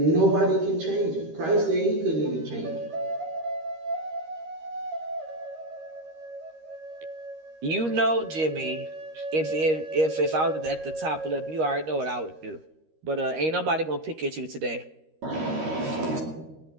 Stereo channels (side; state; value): left; late; 13 ms